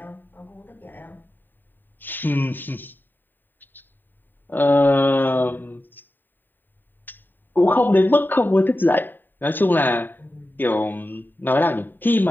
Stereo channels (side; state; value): right; late; 0.092 ms